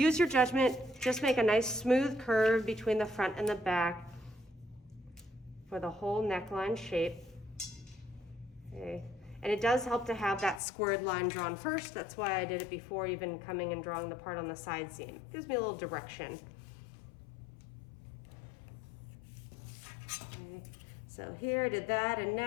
your judgment, just make a nice smooth curve between the front and the back for the whole neckline shape, okay? And it does help to have that squared line drawn first. That's why I did it before even coming and drawing the part on the side seam. It gives me a little direction. Okay, so here I did that, and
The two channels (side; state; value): right; drops out; at 10.6 s